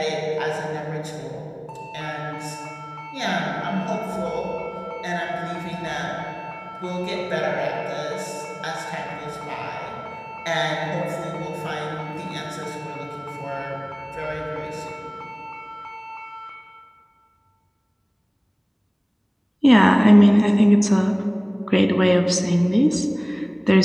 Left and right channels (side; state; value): both; identical; correlation 1.00